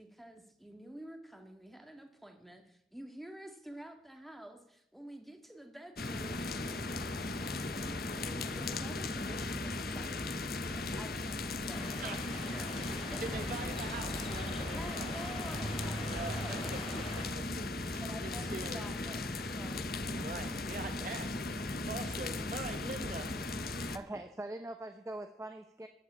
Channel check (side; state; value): both; normal; correlation 0.63